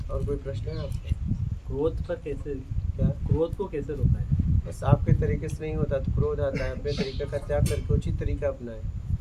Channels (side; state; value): both; identical; correlation 1.00